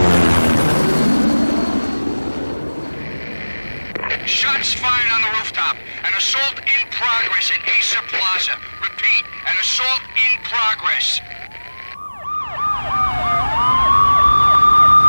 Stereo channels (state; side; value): inverted; both; correlation -1.00